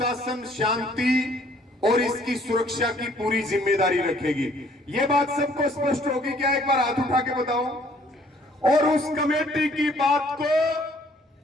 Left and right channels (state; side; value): normal; both; correlation 0.60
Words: शांति और इसकी सुरक्षा की पूरी जिम्मेदारी रखेगी। ये बात सबको स्पष्ट होगी क्या? एक बार हाथ उठा के बताओ। और उस कमेटी की बात को